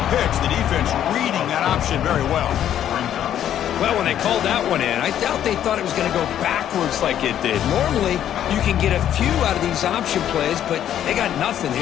pitch. The defense reading that option very well. Well, when they called that one in, I doubt they thought it was going to go backwards like it did. Normally, you can get a few out of these option plays, but they got nothing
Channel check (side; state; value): right; quieter; 10.6 dB